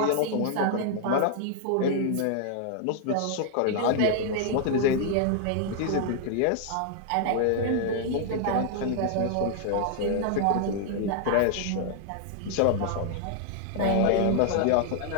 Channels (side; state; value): both; different; correlation 0.00